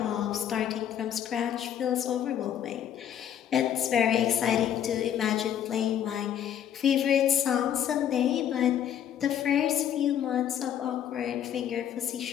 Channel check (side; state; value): right; quieter; 9.9 dB